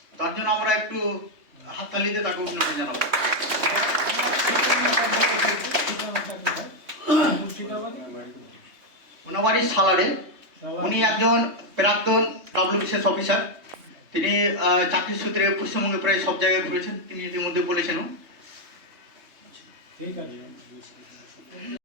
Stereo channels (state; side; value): late; left; 3.2 ms